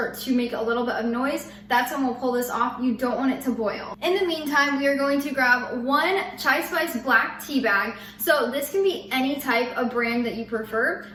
to make a little bit of noise. That's when we'll pull this off. You don't want it to boil. In the meantime, we are going to grab 1 chai spice black tea bag. So this can be any type of brand that you prefer.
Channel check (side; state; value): both; identical; correlation 1.00